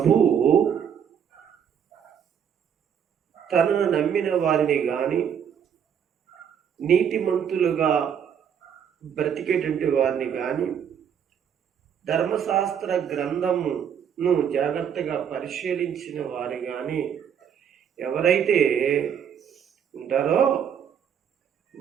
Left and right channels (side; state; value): left; quieter; 8.2 dB